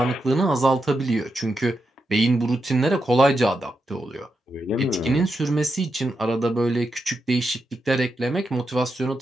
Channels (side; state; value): both; normal; correlation 0.86